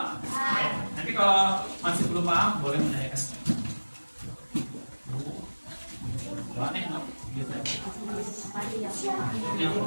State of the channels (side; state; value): both; inverted; correlation -1.00